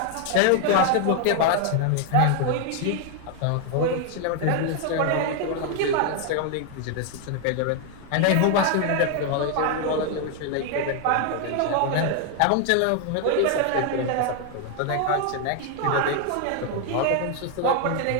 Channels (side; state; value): both; different; correlation 0.00